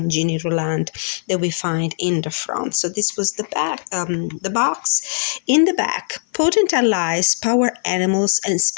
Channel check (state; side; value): silent; right; 56 dB below the other